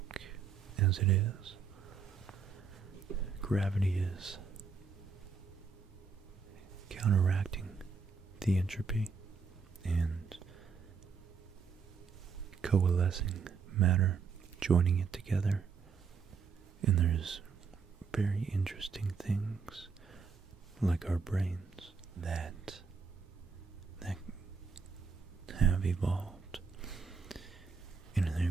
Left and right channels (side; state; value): left; quieter; 5.4 dB